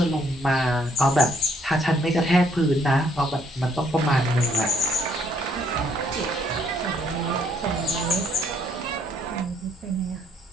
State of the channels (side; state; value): both; normal; correlation 0.67